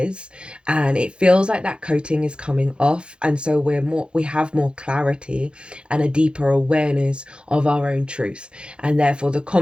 And it feels like that coating is coming off, and so we have more clarity and a deeper awareness of our own truth, and therefore the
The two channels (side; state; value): left; late; 0.055 ms